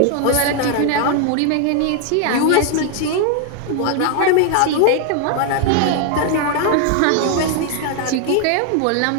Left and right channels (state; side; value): different; both; correlation 0.00